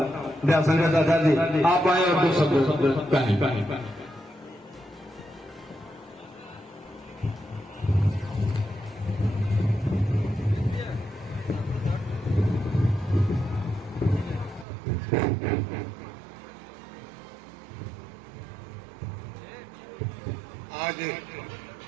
दयाशंकर दादाजी, आप आए और दो शब्द कहें। आज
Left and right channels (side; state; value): left; drops out; at 14.7 s